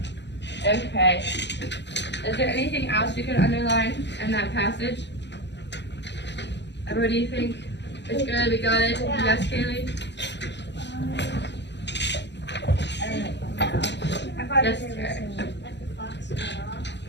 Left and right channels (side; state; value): right; late; 0.51 ms